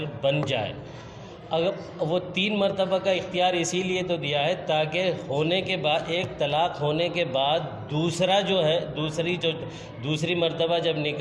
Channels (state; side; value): identical; both; correlation 1.00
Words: بن جائے. اگر وہ 3 مرتبہ کا اختیار اسی لیے تو دیا ہے تاکہ ہونے کے بعد ایک طلاق ہونے کے بعد دوسرا جو ہے دوسری مرتبہ جب